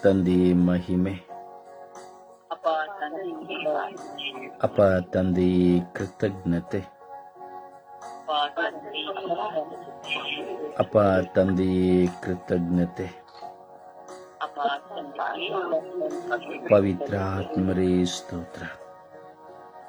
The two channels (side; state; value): both; identical; correlation 1.00